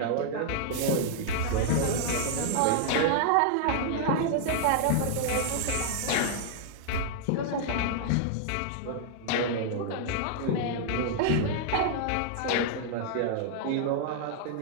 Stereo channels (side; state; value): both; different; correlation -0.01